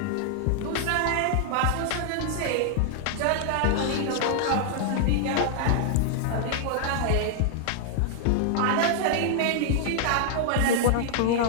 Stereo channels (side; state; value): both; different; correlation -0.01